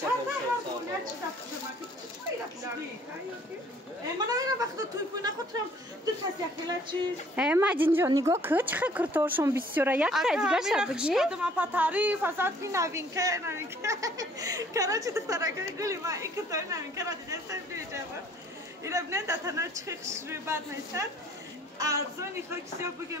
دستاف یا چه دستاف خیلی رفتی من نمیدونم وقتی توی پوی نخوترم دو کسی اخیلا چیز مجین جان نگاه که چه کرتورشون بسیاره یک تا دیگه شد بگی؟ اگه من پا تعریف ازت بی نوین که کراچی دخترکه گلی من این کتای نوین که را دیده سن بیجه بود این ابنه دتنا چه خشروی بد نیستن ارزانی خاکسی ها بگه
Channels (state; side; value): normal; both; correlation 0.57